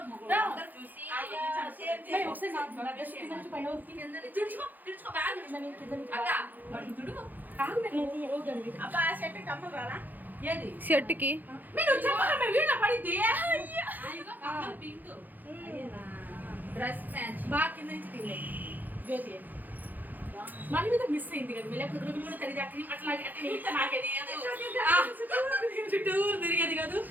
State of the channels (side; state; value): left; late; 0.085 ms